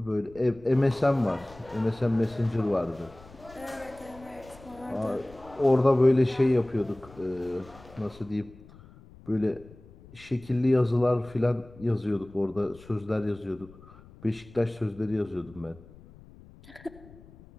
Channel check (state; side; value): noise; left; rumble, 22 dB below the sound